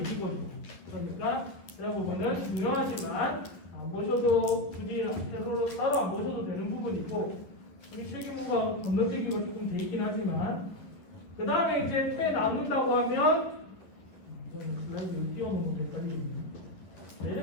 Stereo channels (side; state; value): right; late; 11 ms